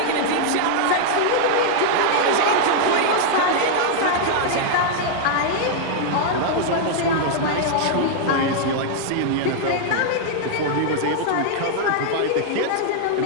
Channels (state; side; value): different; both; correlation -0.01